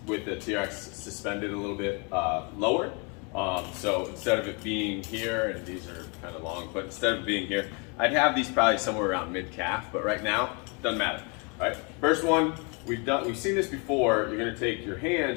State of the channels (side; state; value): right; quieter; 33.3 dB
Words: with the TRX suspended a little bit lower. So instead of it being here, and these are kind of long, but instead of being here, I'd have these probably somewhere around mid-calf, but right now, doesn't matter. All right, first one, we've seen this before. You're gonna take your